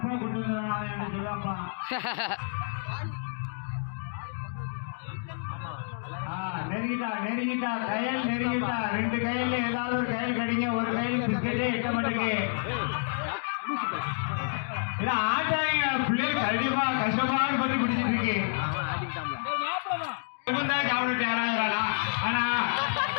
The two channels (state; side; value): silent; right; digital silence